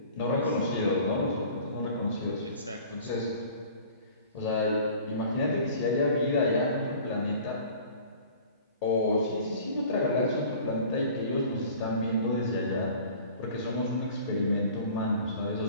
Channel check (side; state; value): both; inverted; correlation -0.46